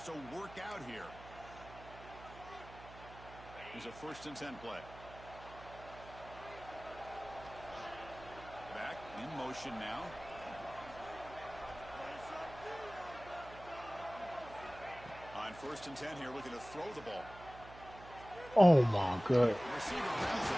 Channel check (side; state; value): right; noise; hum, 17 dB below the sound